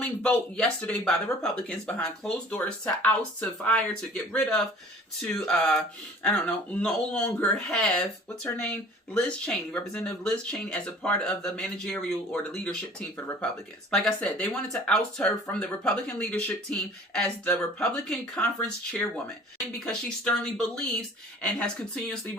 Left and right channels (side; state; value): both; normal; correlation 0.48